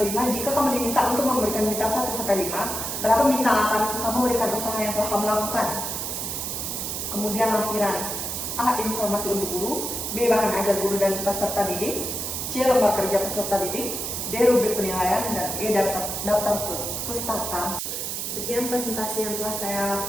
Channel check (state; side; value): noise; right; hiss, 3 dB below the sound